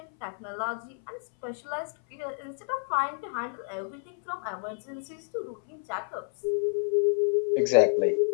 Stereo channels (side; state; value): right; silent; 58 dB below the other